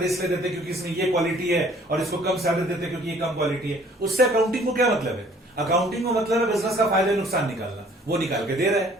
इसलिए देते क्योंकि इसमें ये क्वालिटी है, और इसको कम सैलरी देते क्योंकि ये कम क्वालिटी है। उससे अकाउंटिंग को क्या मतलब है? अकाउंटिंग को मतलब है बिजनेस का फायदा नुकसान निकालना, वो निकाल के दे रहा है,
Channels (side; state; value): both; normal; correlation 0.56